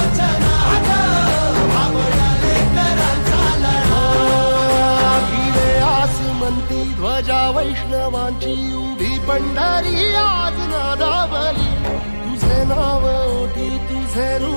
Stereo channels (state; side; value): inverted; both; correlation -1.00